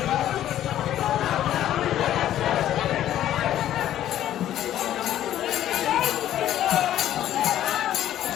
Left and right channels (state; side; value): quieter; right; 12.1 dB